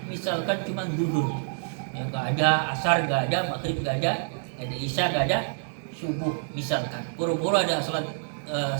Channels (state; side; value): silent; left; digital silence